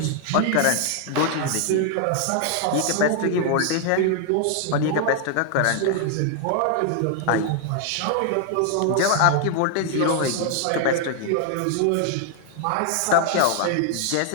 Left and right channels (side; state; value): both; different; correlation 0.00